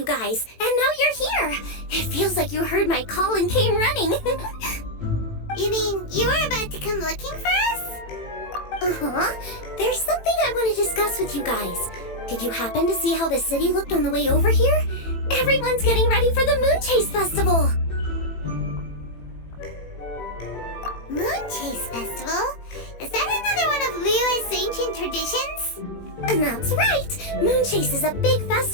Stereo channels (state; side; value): late; right; 18 ms